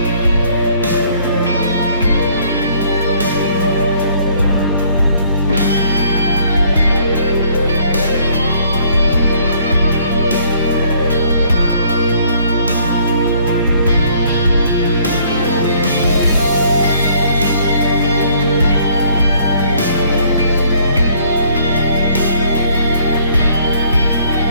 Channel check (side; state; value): both; inverted; correlation -0.61